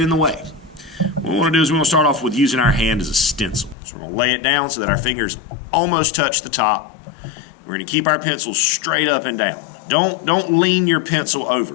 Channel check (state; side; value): drops out; right; at 3.8 s